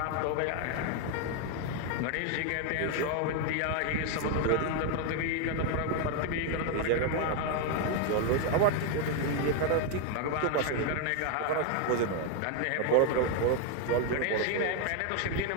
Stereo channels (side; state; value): both; different; correlation 0.01